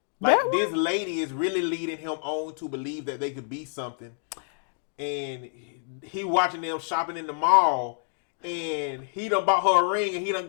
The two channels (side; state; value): right; silent; 60 dB below the other